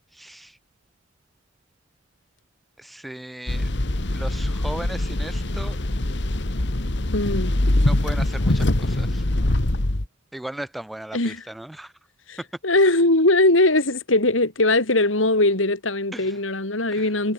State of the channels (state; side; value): normal; both; correlation 0.27